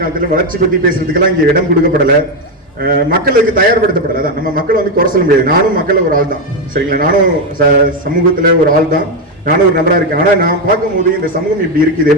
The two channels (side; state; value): both; normal; correlation 0.08